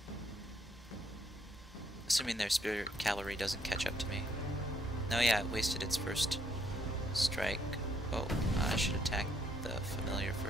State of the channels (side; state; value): both; normal; correlation 0.71